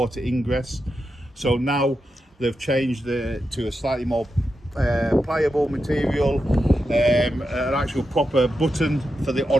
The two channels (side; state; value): both; normal; correlation 0.88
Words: ingress. So now they've changed to a slightly more pliable material, an actual proper button for the